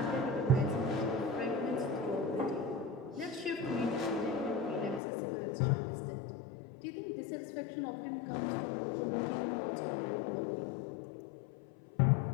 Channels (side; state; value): right; drops out; at 5.0 s